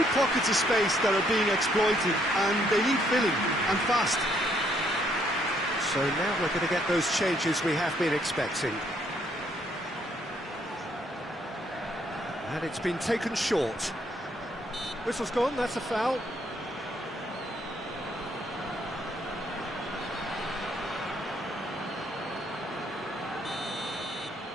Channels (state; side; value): normal; both; correlation 0.69